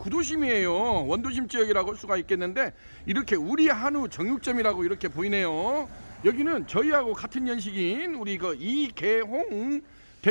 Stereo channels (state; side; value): inverted; both; correlation -1.00